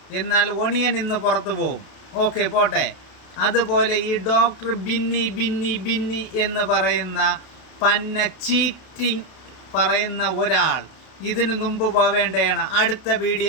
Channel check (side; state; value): right; late; 32 ms